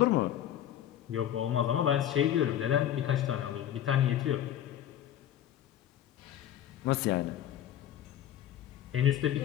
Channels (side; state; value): right; quieter; 11.1 dB